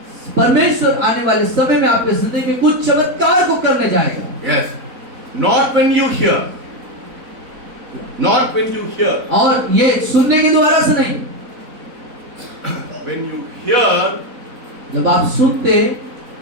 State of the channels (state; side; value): late; left; 4.0 ms